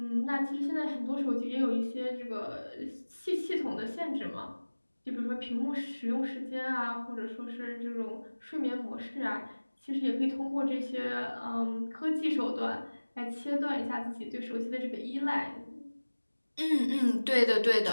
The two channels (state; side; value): inverted; both; correlation -1.00